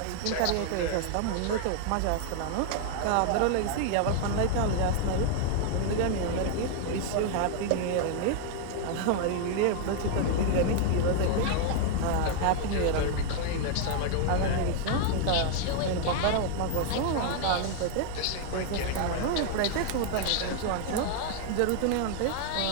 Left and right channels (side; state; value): both; different; correlation 0.00